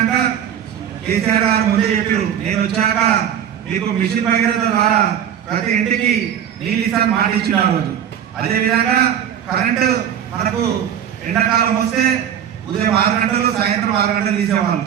కేసీఆర్ గారు ముందే చెప్పారు, నేను వచ్చాక మీకు మిషన్ భగీరథ ద్వారా ప్రతి ఇంటికి నీళ్ళు ఇస్తాను మాట ఇచ్చిన ఆ రోజు. అదేవిధంగా కరెంటు మనకు ఎండాకాలం వస్తే ఉదయం 6 గంటలు సాయంత్రం 6 గంటలు తీసేవాళ్ళు.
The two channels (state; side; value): quieter; left; 9.4 dB